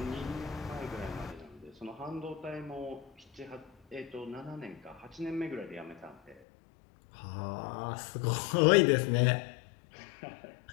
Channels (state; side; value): drops out; right; at 6.4 s